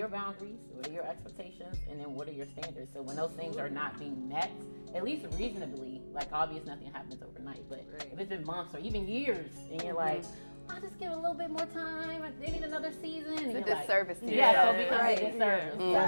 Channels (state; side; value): inverted; both; correlation -1.00